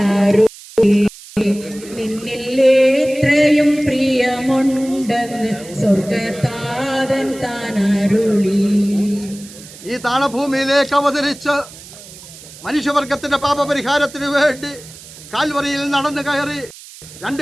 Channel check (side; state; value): right; noise; hiss, 18 dB below the sound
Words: നിന്നിലെത്രയും പ്രിയമുണ്ടെന്ന് സ്വർഗതാതൻ താനരുളി. ഈ താണഭൂമിയിലേക്ക് അവതരിച്ച് മനുഷ്യവർഗത്തിന്റെ പാപപരിഹാരത്തിന് വേണ്ടി കാൽവറിയിൽ നടന്നു കയറി രണ്ട്